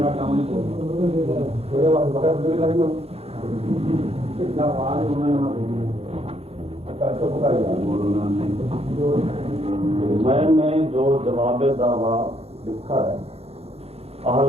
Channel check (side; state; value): left; late; 0.29 ms